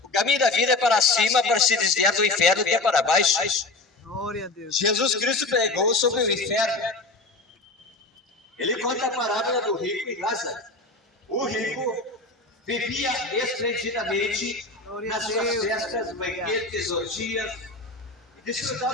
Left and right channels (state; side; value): quieter; right; 3.2 dB